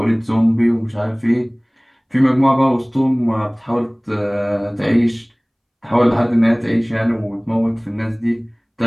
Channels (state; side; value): identical; both; correlation 1.00